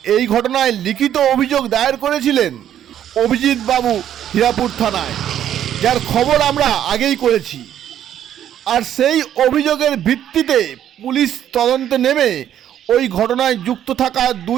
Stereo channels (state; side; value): quieter; left; 10.6 dB